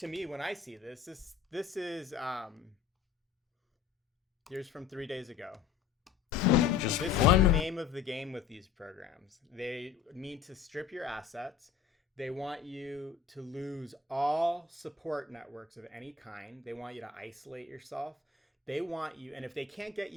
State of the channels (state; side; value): quieter; right; 6.7 dB